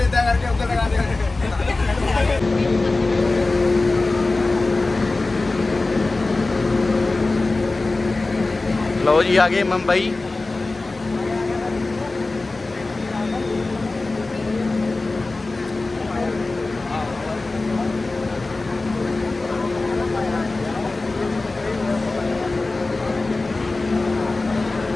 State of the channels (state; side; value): quieter; right; 3.3 dB